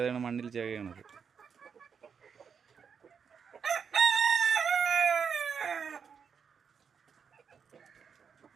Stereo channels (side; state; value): left; quieter; 6.5 dB